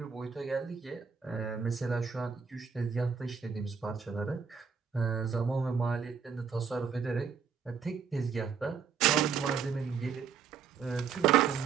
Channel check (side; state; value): left; quieter; 6.4 dB